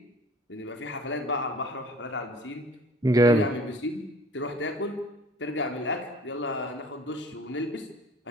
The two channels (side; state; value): both; normal; correlation 0.49